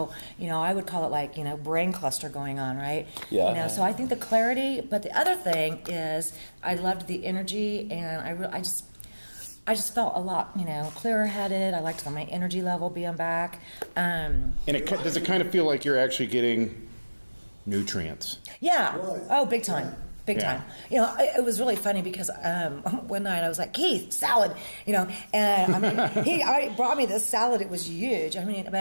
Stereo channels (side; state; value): both; inverted; correlation -1.00